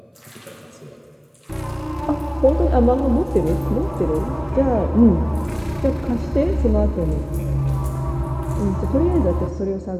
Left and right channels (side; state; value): both; identical; correlation 1.00